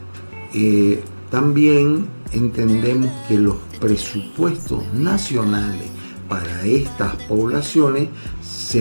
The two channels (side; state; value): both; inverted; correlation -1.00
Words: también entendemos que los presupuestos nacionales para estas poblaciones